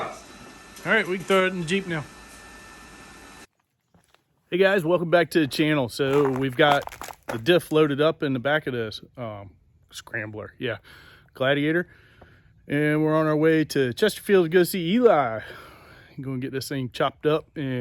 right, we can throw it in the Jeep now. Hey guys, welcome back to the channel. So we've got the diff loaded up in the back of this scrambler. Yeah, Gladiator. And we're on our way to Chesterfield to go see Eli. I'm going to get this thing chopped up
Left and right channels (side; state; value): both; identical; correlation 1.00